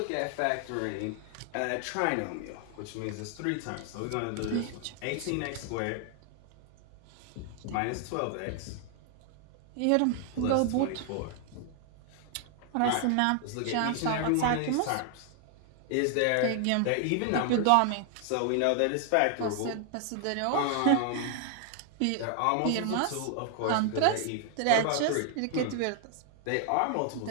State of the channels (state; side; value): different; both; correlation 0.00